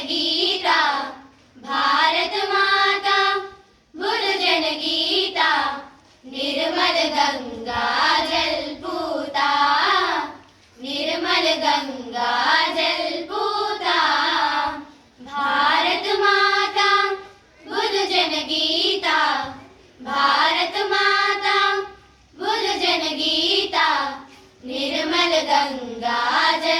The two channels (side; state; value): both; identical; correlation 1.00